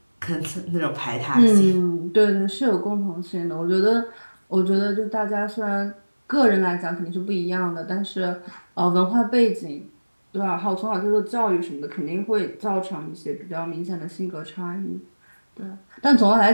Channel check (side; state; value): both; inverted; correlation -1.00